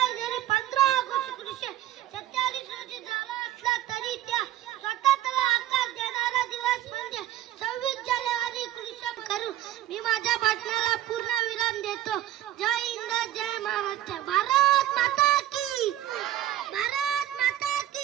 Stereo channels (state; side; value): quieter; left; 13.2 dB